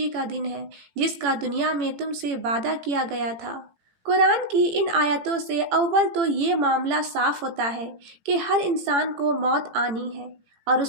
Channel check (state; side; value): late; left; 18 ms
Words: کا دن ہے جس کا دنیا میں تم سے وعدہ کیا گیا تھا۔ قرآن کی ان آیتوں سے اول تو یہ معاملہ صاف ہوتا ہے کہ ہر انسان کو موت آنی ہے، اور